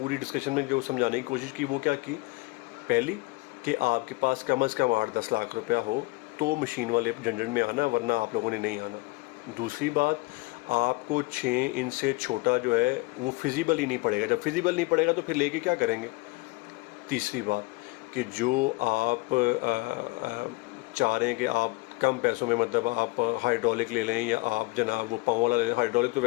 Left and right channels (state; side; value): quieter; right; 24.3 dB